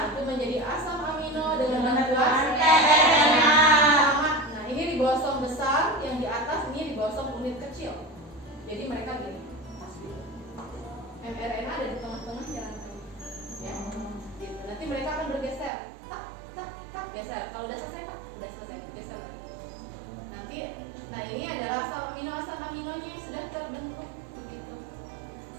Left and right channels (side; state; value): left; drops out; at 15.7 s